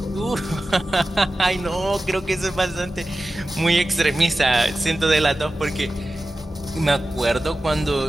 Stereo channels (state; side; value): normal; both; correlation 0.94